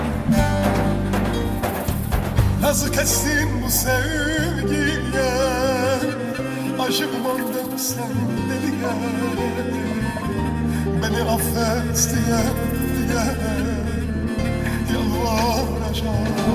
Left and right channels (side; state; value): both; identical; correlation 1.00